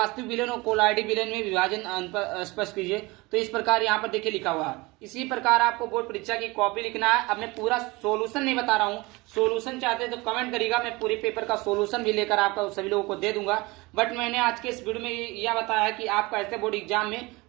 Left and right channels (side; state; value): left; quieter; 23.5 dB